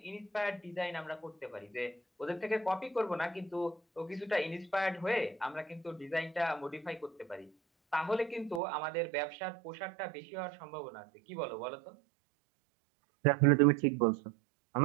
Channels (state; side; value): drops out; left; at 8.6 s